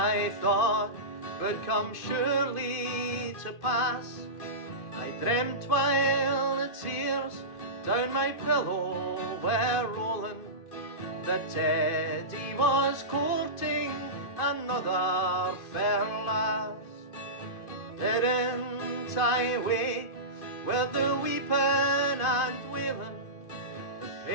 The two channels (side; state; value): right; late; 2.5 ms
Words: thought would come surely to pass. I dreamt while the tears down my pillow were rolling, that Teddy was courting another fair lass. Didn't I wake with the weeping and wailing? The